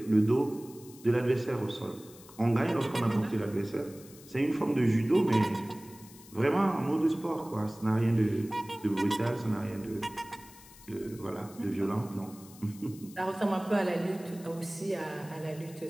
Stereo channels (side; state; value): left; noise; hiss, 21 dB below the sound